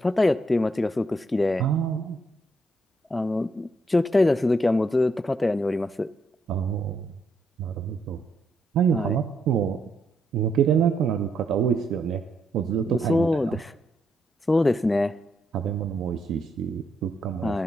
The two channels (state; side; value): normal; both; correlation 0.77